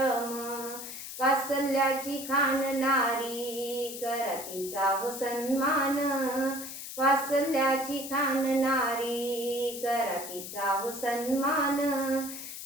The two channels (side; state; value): left; noise; hiss, 9 dB below the sound